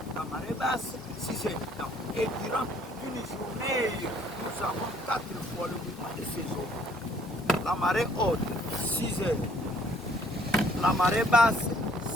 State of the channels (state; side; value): normal; both; correlation 0.62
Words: la marée basse, 6 heures du temps. Et durant une journée, nous avons 4 fois le mouvement de ces eaux. La marée haute, 6 heures. La marée basse,